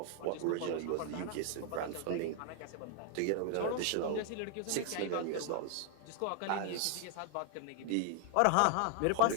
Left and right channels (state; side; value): different; both; correlation 0.00